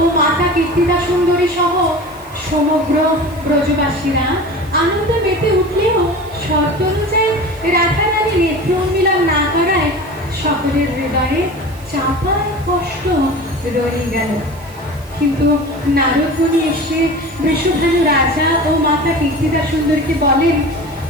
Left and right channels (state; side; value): noise; right; hiss, 25 dB below the sound